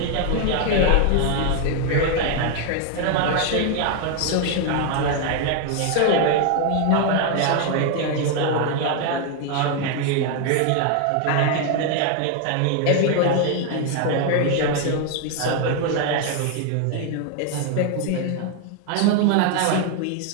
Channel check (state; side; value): different; both; correlation 0.01